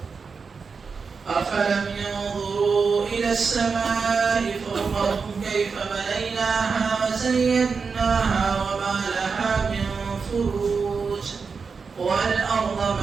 أفلم ينظروا إلى السماء فوقهم كيف بنيناها وزيناها وما لها من فروج والأرض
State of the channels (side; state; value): left; quieter; 5.2 dB